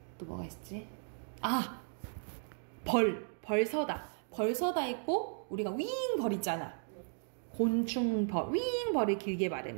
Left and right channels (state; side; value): silent; left; 54 dB below the other